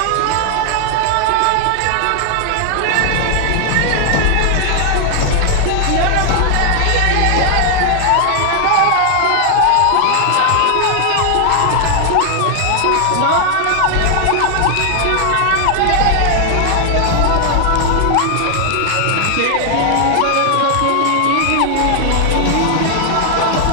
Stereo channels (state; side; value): different; both; correlation 0.00